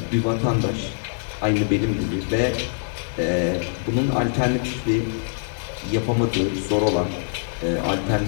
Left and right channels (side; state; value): right; silent; digital silence